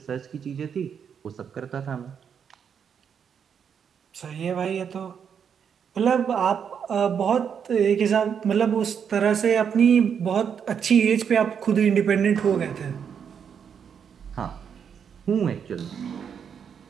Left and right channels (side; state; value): left; quieter; 7.4 dB